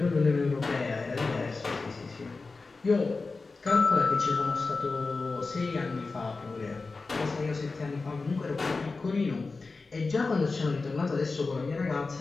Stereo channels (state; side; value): quieter; right; 3.9 dB